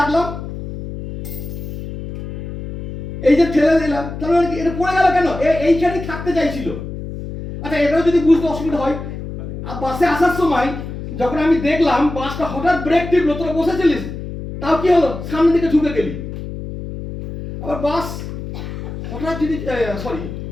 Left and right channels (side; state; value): left; noise; hum, 8 dB below the sound